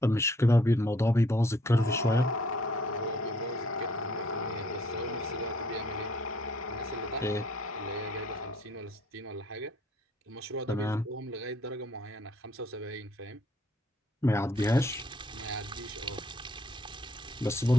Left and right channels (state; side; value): normal; both; correlation 0.64